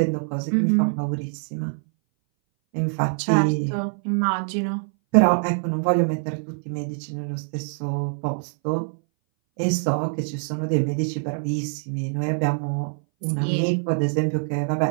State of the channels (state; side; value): silent; left; 60 dB below the other